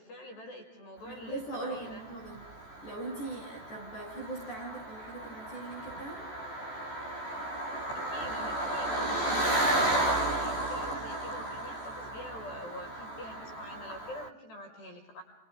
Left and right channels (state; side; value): late; right; 14 ms